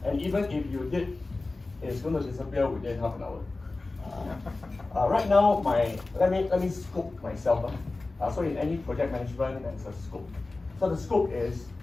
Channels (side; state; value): right; quieter; 3.3 dB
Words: And even if you did, it's going to disappear within half an hour. Right now, let me scope myself. So in any project management, there's a scope. So the scope is,